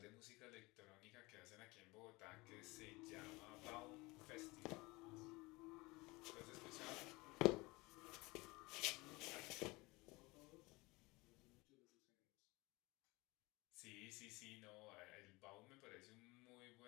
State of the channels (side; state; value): right; quieter; 23.4 dB